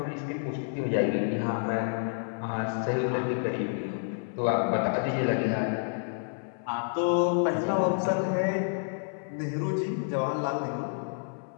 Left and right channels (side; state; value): right; silent; 58 dB below the other